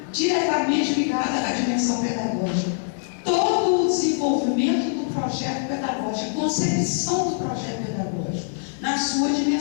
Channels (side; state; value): right; silent; digital silence